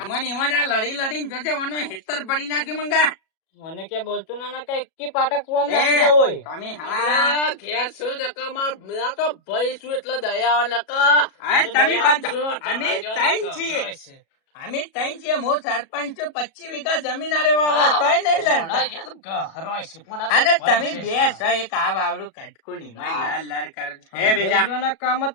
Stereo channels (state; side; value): late; right; 37 ms